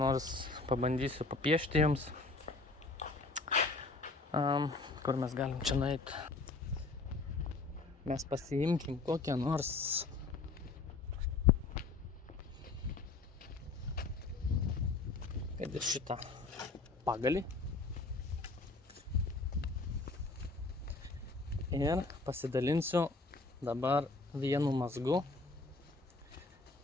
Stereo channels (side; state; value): right; quieter; 3.7 dB